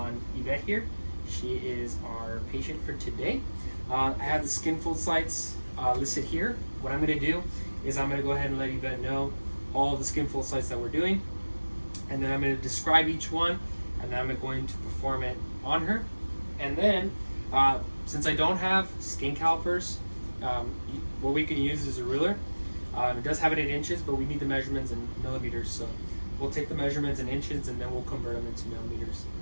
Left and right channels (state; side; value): inverted; both; correlation -1.00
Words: Yvette here. She is our patient for today. I have the skin fold sites listed here. What I'm going to do is I'm going to go ahead and let Yvette know all of the skin fold sites that we're doing, and then I'm going to describe each one, and then I'm going to perform it on her. And then, since I don't have skin calipers, what we can use is a ruler. It does have it in inches, but we need the measurements in millimeters, so we'll take the measurements in inches and then we'll convert them into millimeters